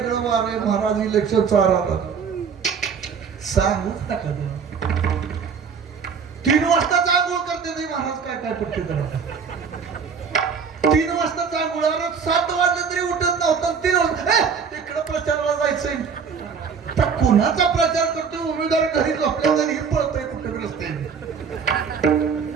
वार आहे महाराज. इलेक्शन चालू सांगूच नका. 3 वाजता आंघोळ करते नाही महाराज. काय काय पट्टी करा. 3 वाजता आंघोळ. 7 वाजले तरी उठत नव्हतं. 3 वाजता तिकडं प्रचाराला जायचंय. तर कुणाचा प्रचार करतो? उमेदवार घरी झोपल्या तरी पळतोय कुठे रस्त्याने.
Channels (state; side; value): quieter; left; 6.2 dB